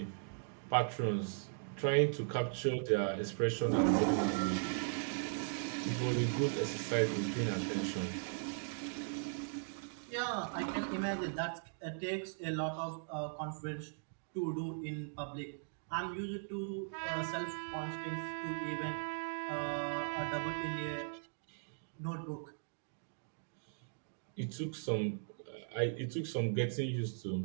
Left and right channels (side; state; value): left; silent; digital silence